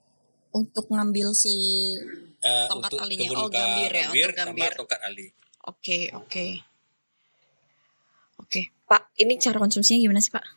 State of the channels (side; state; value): both; inverted; correlation -1.00